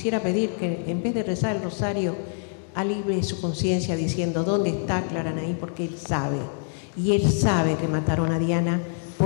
pedir que en vez de rezar el rosario alivie su conciencia diciendo dónde está Claranaí, porque él sabe, y él sabe que mataron a Diana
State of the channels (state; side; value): silent; right; digital silence